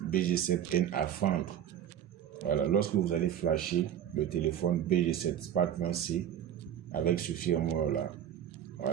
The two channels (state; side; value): quieter; left; 10.0 dB